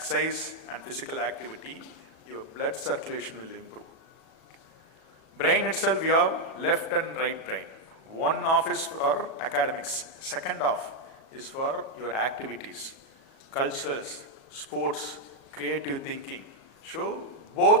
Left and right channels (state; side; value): late; right; 37 ms